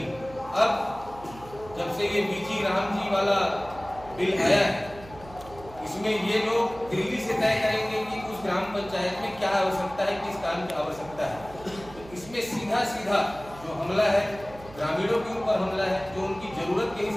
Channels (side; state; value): right; noise; hum, 18 dB below the sound